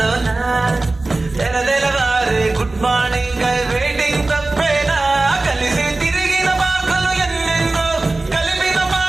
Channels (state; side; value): quieter; left; 3.1 dB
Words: తెలవారే గుడ్ మార్నింగ్ వెయిటింగ్ తప్పేనా, కలిసి తిరిగిన మాటలు ఎన్నెన్నో, కలిపిన